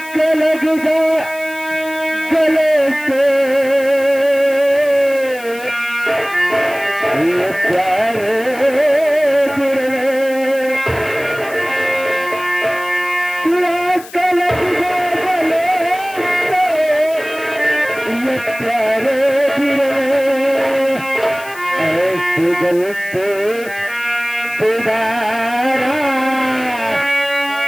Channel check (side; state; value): left; noise; hiss, 18 dB below the sound